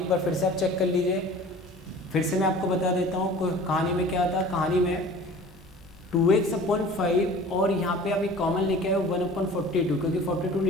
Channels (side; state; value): both; normal; correlation 0.44